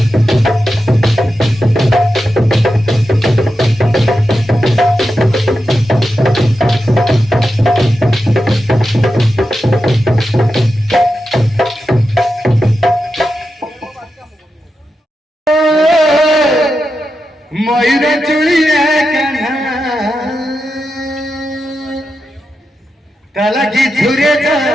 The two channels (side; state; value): both; normal; correlation 0.89